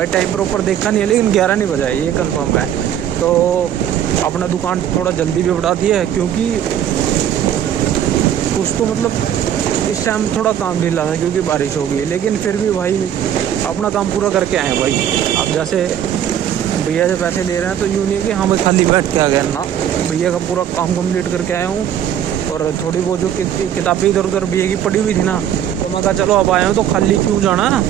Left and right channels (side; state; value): left; quieter; 10.1 dB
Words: टाइम प्रॉपर देखा नहीं है, लेकिन 11 नहीं बजा है ये कंफर्म है। तो अपना दुकान थोड़ा जल्दी भी बढ़ा दिया है, क्योंकि कुछ तो मतलब इस टाइम थोड़ा काम ढीला था क्योंकि बारिश हो गई, लेकिन फिर भी भाई अपना काम पूरा करके आए हैं भाई। अब जैसे भैया से पैसे ले रहे हैं तो यूँ नहीं है कि हाँ मैं खाली बैठ के आ गया ना, भैया का पूरा काम कंप्लीट करके आया हूँ। और थोड़ी बहुत जो किताबें इधर उधर भैया की पड़ी हुई थी ना, तो मैं कहा चलो अब आया हूँ तो खाली क्यों जाना,